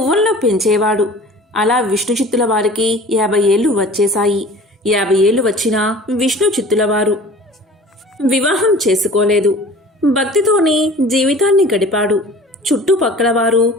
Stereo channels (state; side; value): normal; both; correlation 0.44